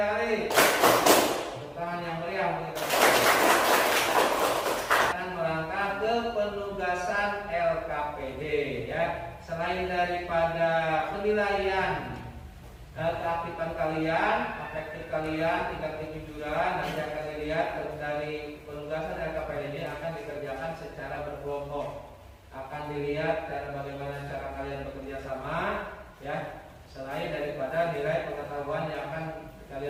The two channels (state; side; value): identical; both; correlation 1.00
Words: kali. Tepuk tangan yang meriah. Dan melangkah ke penugasan LKPD ya. Selain daripada penilaian keaktifan kalian, efektif kalian, tingkat kejujuran, nanti akan dilihat dari penugasan LKPD ini akan dikerjakan secara berkelompok. Akan dilihat bagaimana cara kalian bekerja sama, ya. Selain daripada nilai pengetahuan yang akan